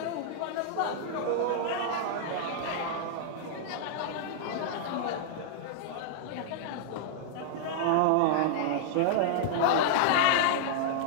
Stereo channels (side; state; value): both; different; correlation -0.01